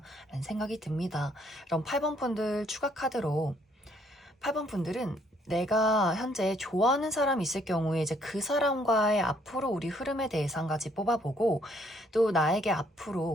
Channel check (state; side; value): normal; both; correlation 0.66